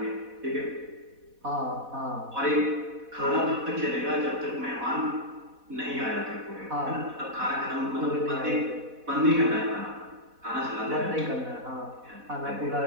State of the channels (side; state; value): left; late; 4.1 ms